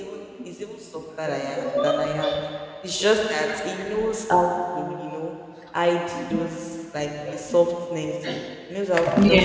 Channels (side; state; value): both; identical; correlation 1.00